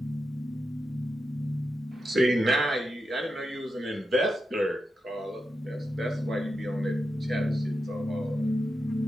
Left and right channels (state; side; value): normal; both; correlation 0.88